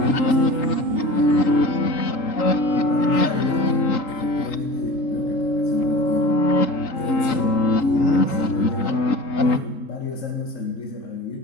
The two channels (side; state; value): right; late; 3.9 ms